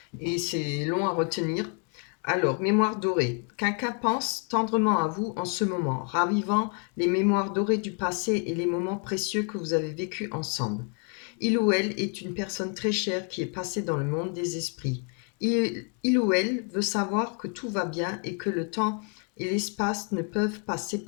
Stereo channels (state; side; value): quieter; right; 36.6 dB